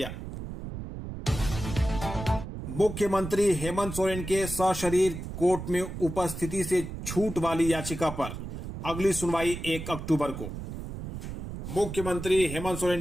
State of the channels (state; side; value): noise; right; rumble, 8 dB below the sound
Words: मुख्यमंत्री हेमंत सोरेन के सशरीर कोर्ट में उपस्थिति से छूट वाली याचिका पर अगली सुनवाई 1 अक्टूबर को। मुख्यमंत्री हेमंत सोरेन